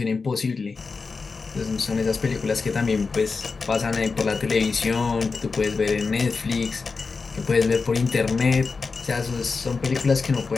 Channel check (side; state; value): right; quieter; 4.5 dB